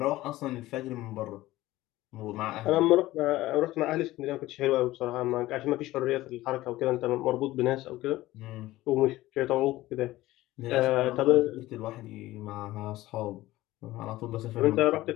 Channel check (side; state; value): right; quieter; 16.9 dB